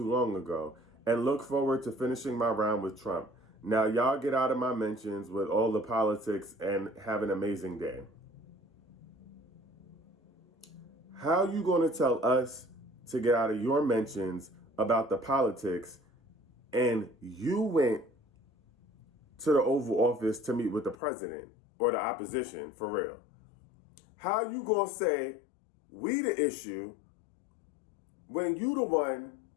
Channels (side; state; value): right; drops out; at 21.0 s